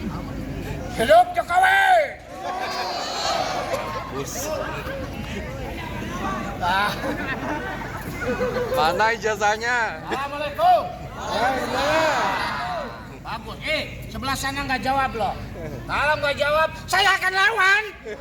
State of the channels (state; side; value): identical; both; correlation 1.00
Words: Hidup Jokowi. Bus. Nah. Mana ijazahnya? Assalamualaikum. Bagus. Sebelah sana nggak jawab loh. Kalau nggak jawab, saya akan lawan.